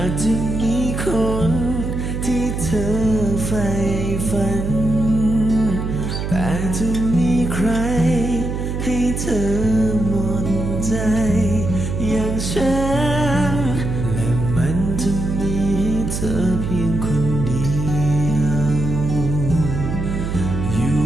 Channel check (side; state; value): right; noise; hum, 3 dB below the sound